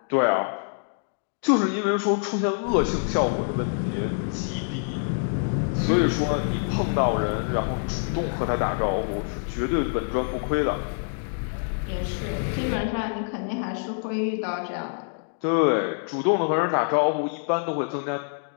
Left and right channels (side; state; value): right; silent; digital silence